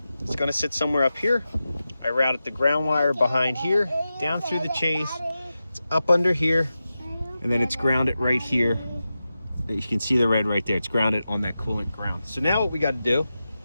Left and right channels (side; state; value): both; inverted; correlation -0.92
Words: It's going to sit somewhere up here. I routed the ground wire behind here, down through the chase. It's up under here, and then it's grounded right here. You can see the red right there. It's grounded on that coolant ground. So now what we got to do